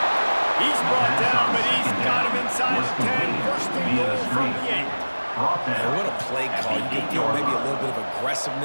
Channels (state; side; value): inverted; both; correlation -1.00